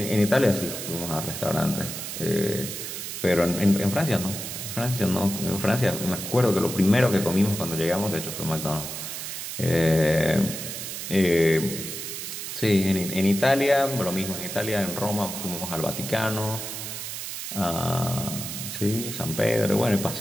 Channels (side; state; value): right; noise; hiss, 7 dB below the sound